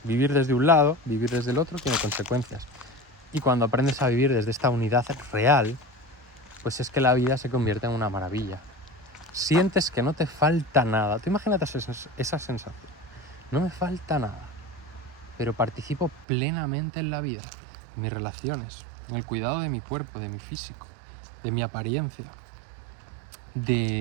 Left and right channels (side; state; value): left; drops out; at 16.2 s